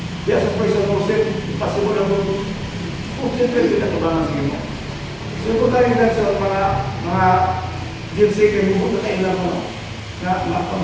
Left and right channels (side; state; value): both; identical; correlation 1.00